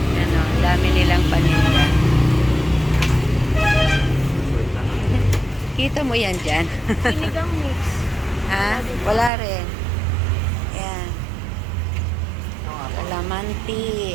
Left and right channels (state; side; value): drops out; left; at 9.3 s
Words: Ano, dami nilang paninda. Kita mo yan dyan? Sinigang mix. Ha? Wala rin. Ayan.